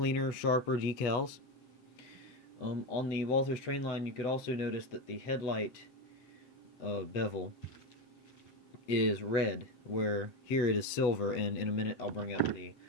sharper decals. On the Walthers Trainline, you could also notice that the headlight bevel is red, where here it is silver, and in a minute I'll bring up the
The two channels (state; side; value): late; right; 8.3 ms